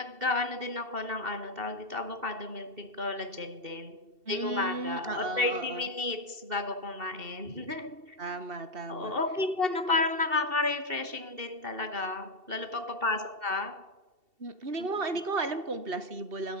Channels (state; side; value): late; left; 2.7 ms